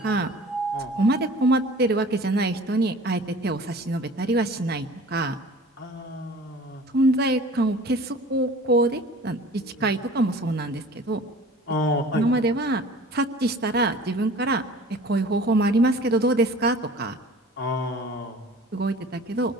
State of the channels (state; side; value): normal; both; correlation 0.44